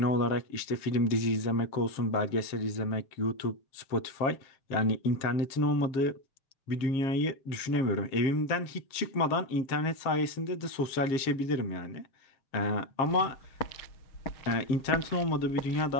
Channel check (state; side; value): late; right; 7.5 ms